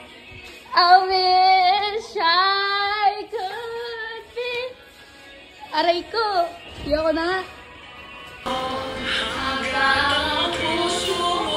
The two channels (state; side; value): identical; both; correlation 1.00